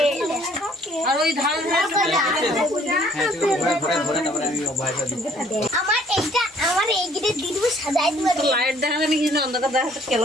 আর ওই ধার আমার এইটা দিদি সাজাই দিবা লাইট দেখা জানি কি অন্ধকার দেখা তো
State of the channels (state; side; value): normal; both; correlation 0.60